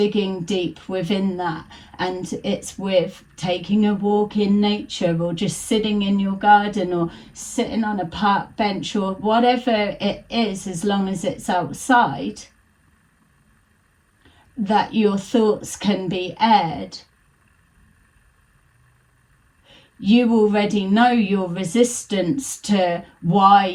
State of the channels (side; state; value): both; identical; correlation 1.00